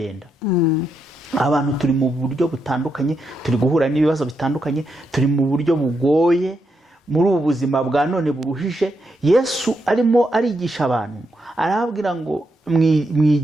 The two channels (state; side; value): normal; both; correlation 0.82